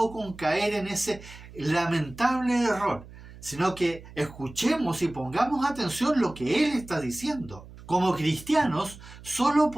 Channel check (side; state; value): right; noise; hum, 18 dB below the sound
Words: con caer en ese lamentable error, sino que escuchemos y pongamos atención a lo que Él está diciendo. Como cristianos, solo